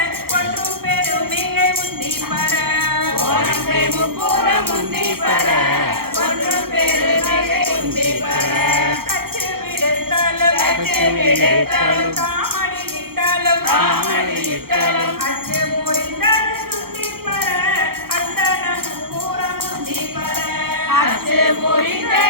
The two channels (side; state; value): left; late; 0.94 ms